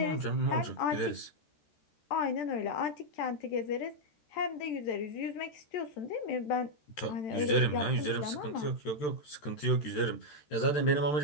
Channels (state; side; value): late; right; 13 ms